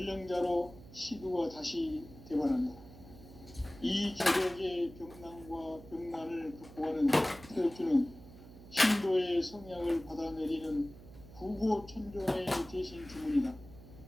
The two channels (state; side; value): noise; right; hum, 18 dB below the sound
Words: 시두가 다시 대발한다. 이 개벽의 병난과 병난을 극복하는 태엽주는 신도의 성향을 받아내리는 부고천존의 대신 주문이다.